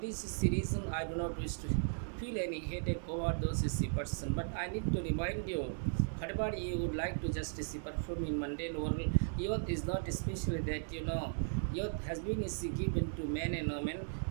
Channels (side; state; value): left; silent; digital silence